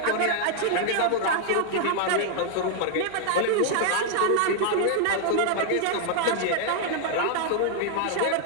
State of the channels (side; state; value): both; different; correlation 0.00